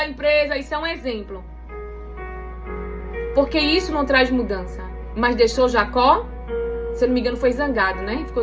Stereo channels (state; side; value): identical; both; correlation 1.00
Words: empresa, isso é um exemplo. Porque isso não traz mudança. Mas deixou Jacó, se eu não me engano, foi zangado, né?